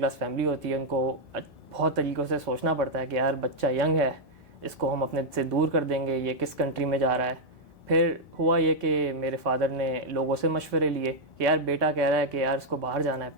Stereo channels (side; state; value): both; normal; correlation -0.02